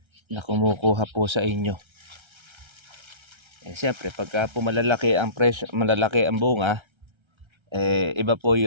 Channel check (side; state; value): left; late; 1.3 ms